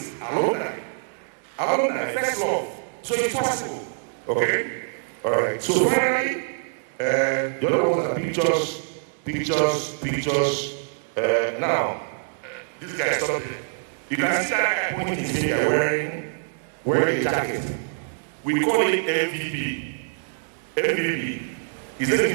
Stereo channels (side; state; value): left; silent; digital silence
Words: Alumni. Alumni, first love. So it's possible. Okay? Alright. So finally, the other ones are pictures. Now, this guy is something. You can see that guy pointing his finger wearing a jacket. We call it MVP. MVP. He's an